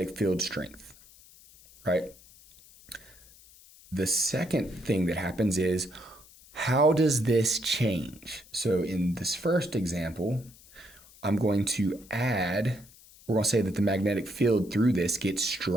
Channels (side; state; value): left; noise; hiss, 24 dB below the sound